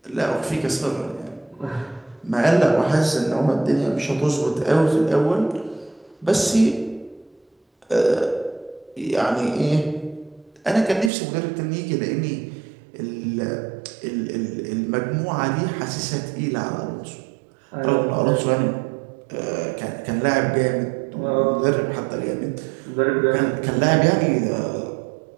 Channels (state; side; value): drops out; left; at 11.1 s